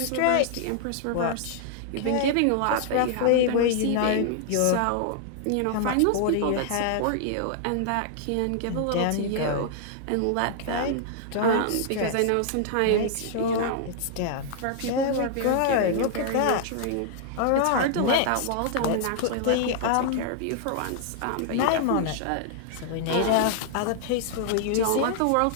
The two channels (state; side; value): different; both; correlation -0.01